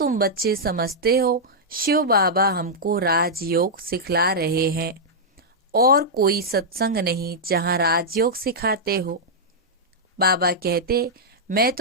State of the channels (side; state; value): both; normal; correlation -0.08